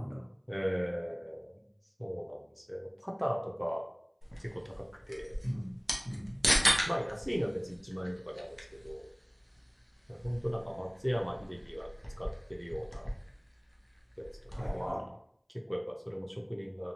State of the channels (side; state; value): both; identical; correlation 1.00